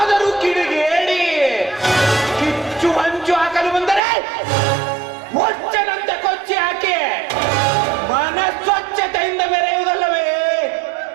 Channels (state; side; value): drops out; left; at 4.0 s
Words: ಕಿಡಿಗೇಡಿ ಕಿಚ್ಚು ಹಂಚು ಹಾಕಲು ಬಂದರೆ ಒಚ್ಚನಂತೆ ಕೊಚ್ಚಿ ಹಾಕಿ ಮನಸ್ವಚ್ಛತೆಯಿಂದ ಮೆರೆಯುವುದಲ್ಲವೇ